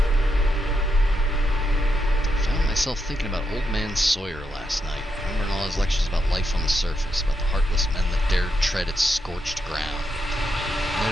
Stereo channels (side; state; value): both; normal; correlation 0.82